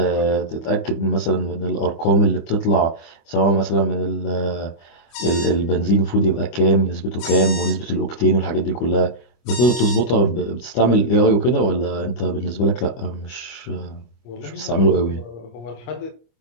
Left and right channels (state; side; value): late; right; 25 ms